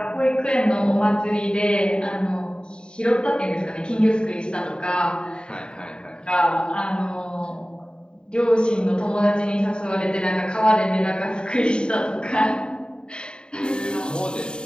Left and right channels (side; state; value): right; late; 0.050 ms